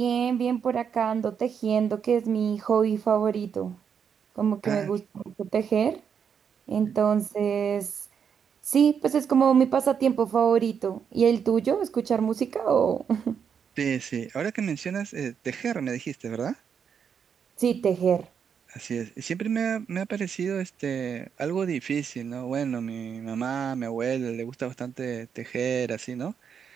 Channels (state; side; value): quieter; left; 7.2 dB